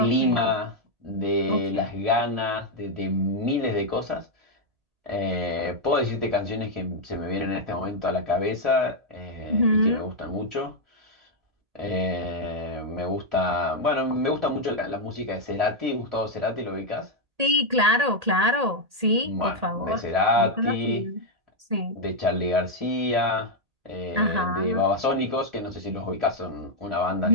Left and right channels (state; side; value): late; left; 1.8 ms